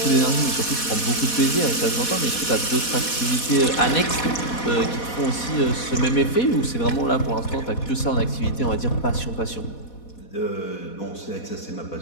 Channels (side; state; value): right; late; 4.1 ms